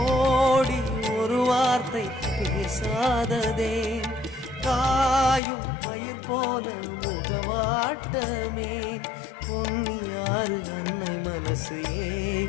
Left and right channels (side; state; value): right; drops out; at 5.4 s